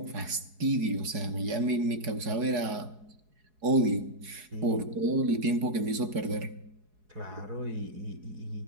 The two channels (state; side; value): late; left; 4.7 ms